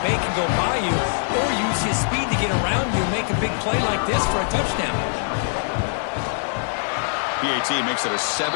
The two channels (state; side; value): silent; right; digital silence